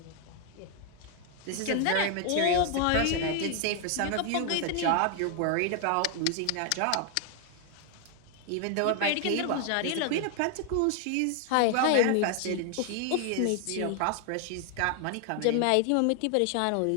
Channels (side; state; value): both; different; correlation 0.00